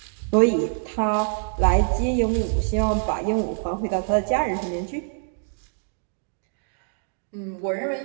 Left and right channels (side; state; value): left; silent; digital silence